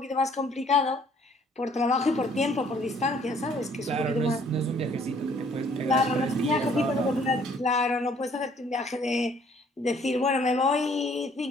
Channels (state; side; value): normal; both; correlation 0.60